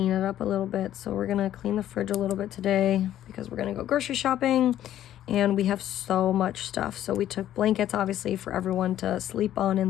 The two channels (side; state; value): right; quieter; 12.0 dB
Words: it up a little bit. So we're going to clean the fridge a little bit today because we're going to go grocery shopping. And we have so much stuff. So we took blankets, obviously, for everyone to sleep on in